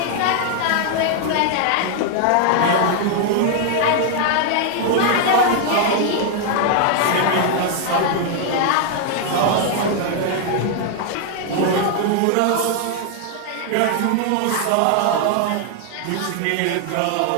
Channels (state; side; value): different; both; correlation 0.00